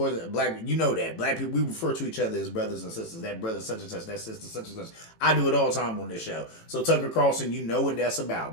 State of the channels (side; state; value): right; late; 18 ms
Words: black, you know that black people, we refer to each other as brothers and sisters. That brother such and such, that sister such and such. I do it all the time on this show. So Tucker Carlson, you know what that's about,